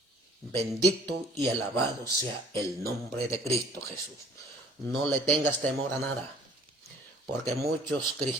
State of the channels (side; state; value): both; normal; correlation 0.55